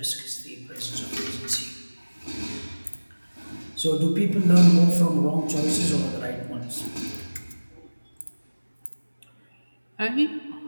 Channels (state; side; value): inverted; both; correlation -1.00